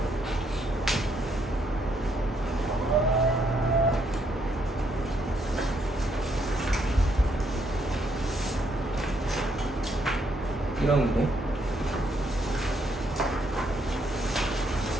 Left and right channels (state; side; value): normal; both; correlation 0.73